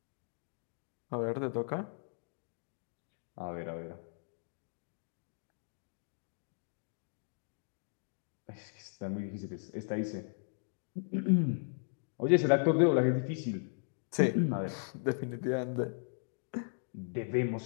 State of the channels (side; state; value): right; silent; digital silence